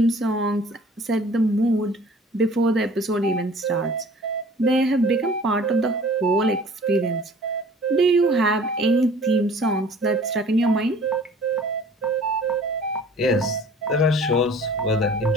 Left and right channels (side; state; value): both; normal; correlation 0.49